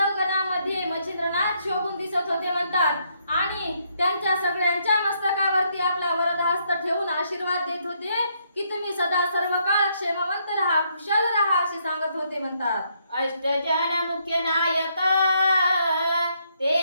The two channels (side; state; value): both; inverted; correlation -0.73